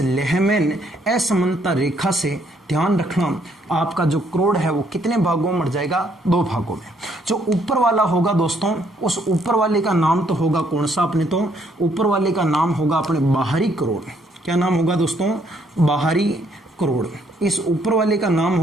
लेहमैन असमानता रेखा से ध्यान रखना आपका जो करोड़ है वो कितने भागों में मर जाएगा? 2 भागों में। जो ऊपर वाला होगा दोस्तों, उस ऊपर वाले का नाम तो होगा कौन सा? अपने तो ऊपर वाले का नाम होगा अपने बाहरी करोड़। क्या नाम होगा दोस्तों? बाहरी करोड़। इस ऊपर वाले का नाम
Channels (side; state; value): both; normal; correlation 0.69